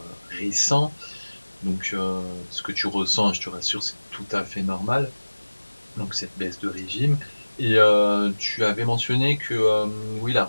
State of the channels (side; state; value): both; inverted; correlation -1.00